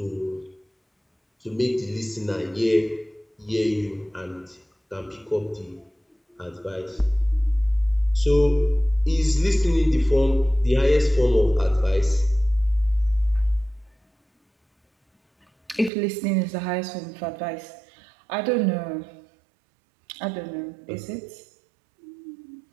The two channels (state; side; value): drops out; left; at 15.9 s